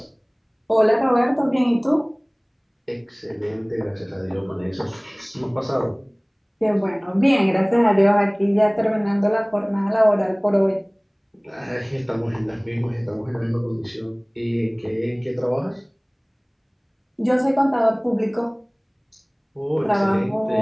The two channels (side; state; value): both; identical; correlation 1.00